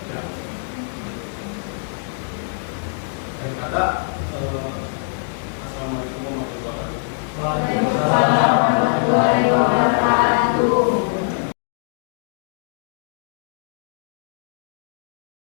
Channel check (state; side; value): silent; right; digital silence